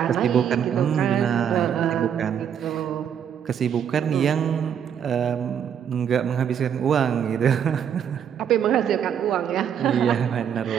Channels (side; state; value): left; quieter; 8.5 dB